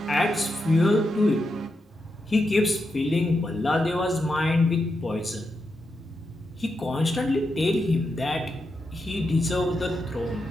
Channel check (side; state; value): both; normal; correlation 0.86